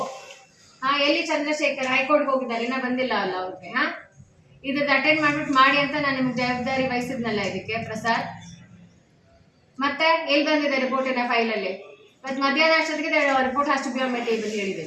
ಹಾ, ಎಲ್ಲಿ ಚಂದ್ರಶೇಖರ್ ಹೈಕೋರ್ಟ್ಗೆ ಹೋಗಿದ್ದಾರೆ, ಇನ್ನ ಬಂದಿಲ್ಲ ಅಲ್ಲ ಅವ್ರಿಗೆ? ಹಾ, ಇದ್ರದ್ದು ಅಟೆಂಡ್ ಮಾಡ್ಬಿಟ್ಟು ಮಾಡಿ ಅಂತ ನಾನು ನಿಮ್ಗೆ ಜವಾಬ್ದಾರಿ ವಹಿಸಿದ್ನಲ್ಲ ಇದಕ್ಕೆ ಪ್ರಸಾದ್. ಮತ್ತೆ ಎಲ್ಲಿ ಬಂದಿದೆ ರಿಪೋರ್ಟಿನ ಫೈಲಲ್ಲಿ? ಇವತ್ತು ಮಧ್ಯಾಹ್ನ ಅಷ್ಟೊತ್ತಿಗೆ ರಿಪೋರ್ಟ್ ಅಷ್ಟು ಬಿ ಆನ್ ಟೇಬಲ್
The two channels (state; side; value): identical; both; correlation 1.00